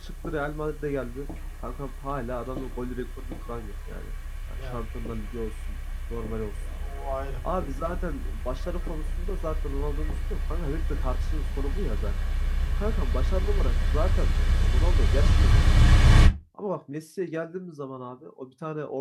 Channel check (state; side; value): identical; both; correlation 1.00